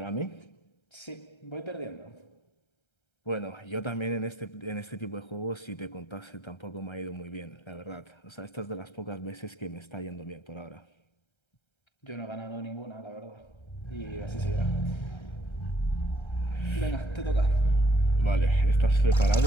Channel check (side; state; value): right; late; 1.3 ms